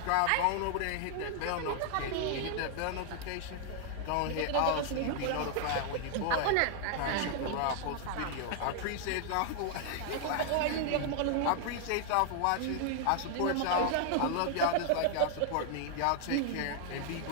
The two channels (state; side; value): different; both; correlation 0.00